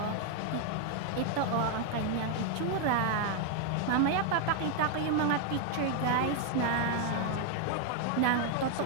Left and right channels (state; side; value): different; both; correlation 0.00